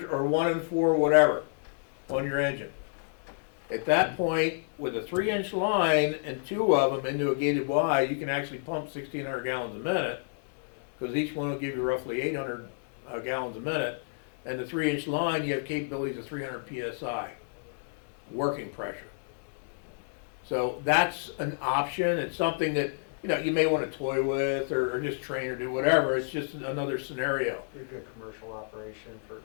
or 1 and 4, whatever, on your engine. At that point, with a 3-inch line and 2 of them into a gated Y, you can actually pump 1,600 gallons a minute, because each one will give you roughly 800 gallons a minute. And the 3-inch line, you have capabilities of 300 psi working pressure. So that's an option. It's something that, you may want to toy with or just train or do whatever. It's just another scenario. Be a good commercial operation for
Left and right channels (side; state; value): right; silent; digital silence